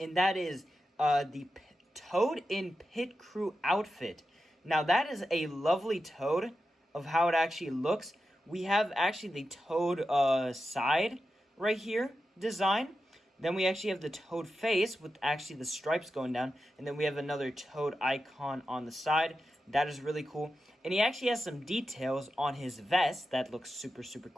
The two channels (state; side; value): normal; both; correlation 0.90